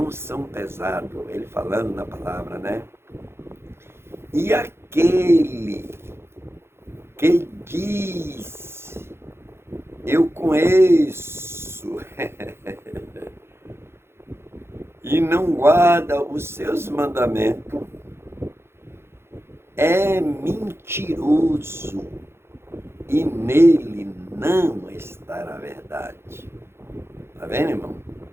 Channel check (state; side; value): late; left; 0.12 ms